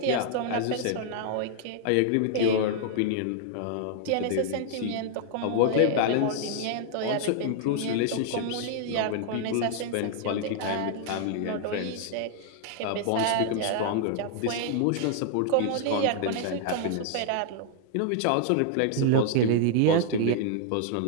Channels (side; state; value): both; different; correlation -0.01